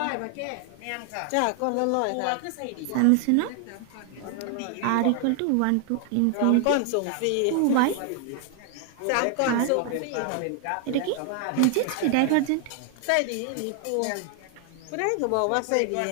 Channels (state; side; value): different; both; correlation 0.00